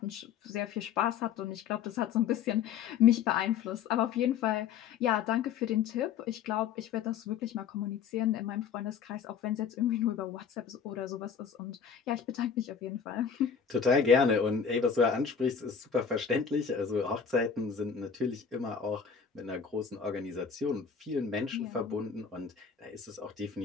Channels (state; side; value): quieter; right; 7.0 dB